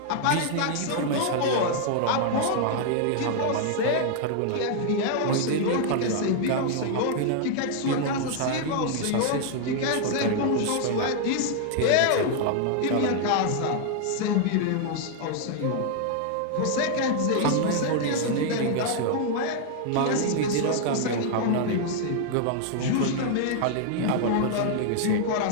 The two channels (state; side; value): different; both; correlation 0.00